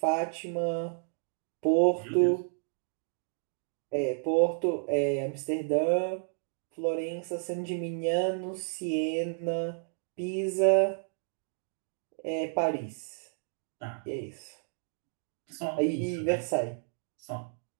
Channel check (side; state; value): left; silent; digital silence